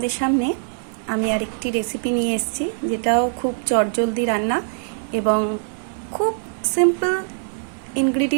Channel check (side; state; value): left; silent; digital silence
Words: সামনে আমি আরেকটি রেসিপি নিয়ে এসেছি, যেটাও খুব চটজলদি রান্না এবং খুব সিম্পল